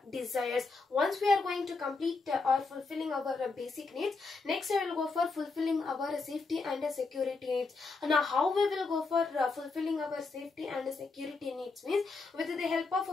desires. Once we are going to complete or fulfilling our basic needs, next I will go for fulfilling our safety and security needs. Now how we will go for fulfilling our safety and security needs means with the help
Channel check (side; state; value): right; quieter; 4.0 dB